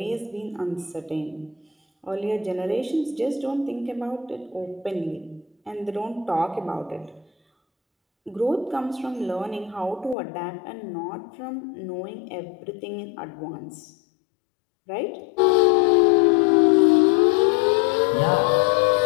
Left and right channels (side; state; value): right; drops out; at 10.2 s